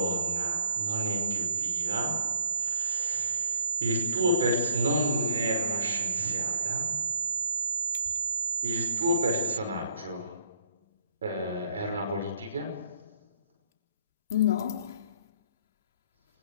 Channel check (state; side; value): inverted; both; correlation -0.52